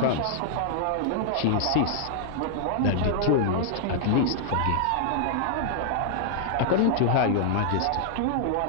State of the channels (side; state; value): both; different; correlation -0.01